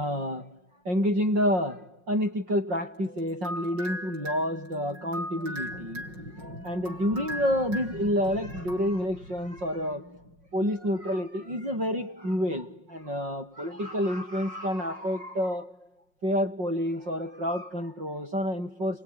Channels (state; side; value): late; left; 5.5 ms